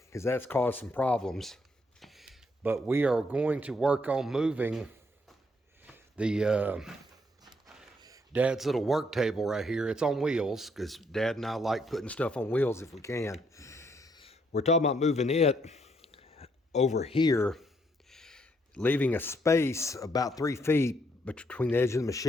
that's caused some problems. But we are going to work on moving the Dad's little work table right here. It's on wheels, because Dad and I like putting stuff on wheels if we can. We're talking about moving it over here, leaving a space about 3 feet between the edge of the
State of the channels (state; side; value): normal; both; correlation 0.72